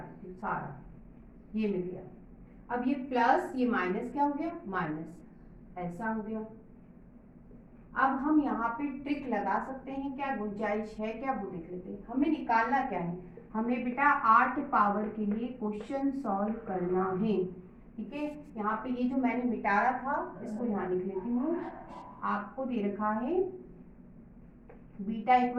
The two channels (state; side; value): identical; both; correlation 1.00